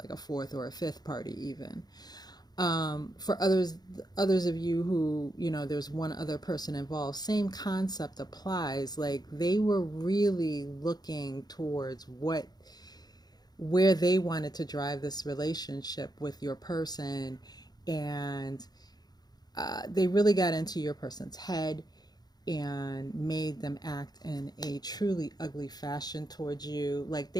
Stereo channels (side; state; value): right; late; 0.19 ms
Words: a fourth or a fifth party even. For others of you who, there's one other person involved, same concept applies. Like, they were really looking towards where they wanted to drive this relationship with your person, and they really got into your person's head and made them act in a truly ugly fashion towards you. Like,